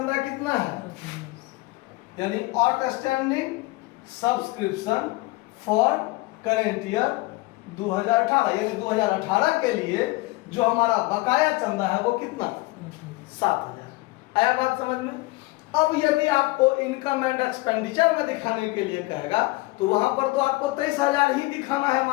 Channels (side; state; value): right; quieter; 22.0 dB